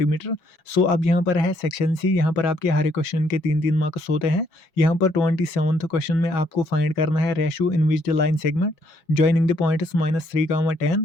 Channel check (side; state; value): right; late; 5.5 ms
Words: So अब यहाँ पर है सेक्शन सी। यहाँ पर आपके हर एक क्वेश्चन के 3-3 मार्क्स होते हैं। यहाँ पर 27th क्वेश्चन में आपको फाइंड करना है ratio in which the line segment joining the points -3,